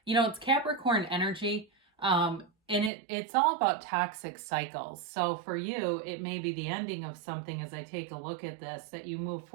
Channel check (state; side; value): drops out; left; at 2.9 s